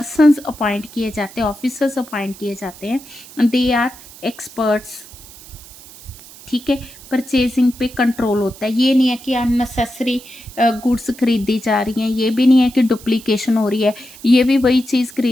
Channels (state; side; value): noise; right; hiss, 19 dB below the sound